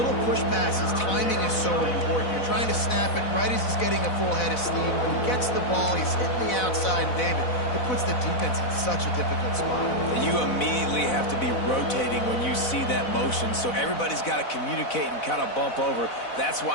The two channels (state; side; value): late; right; 4.0 ms